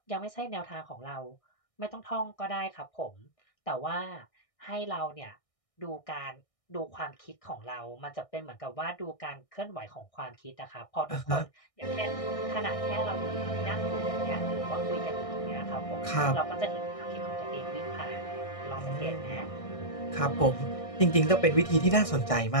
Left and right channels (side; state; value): right; late; 1.6 ms